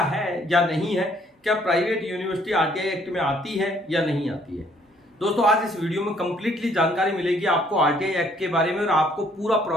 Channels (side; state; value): both; normal; correlation 0.64